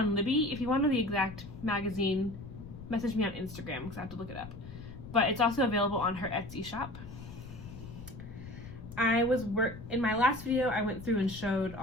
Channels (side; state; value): left; noise; rumble, 14 dB below the sound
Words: on Libby. If you want to know the exact magazine, message me on Instagram because I have to look it up. But it's also available on her Etsy shop. In my last video, I went through and showed